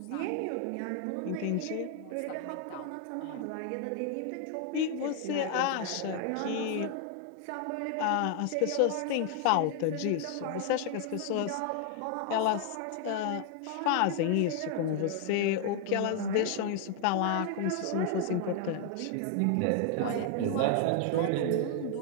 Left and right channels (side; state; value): both; different; correlation 0.00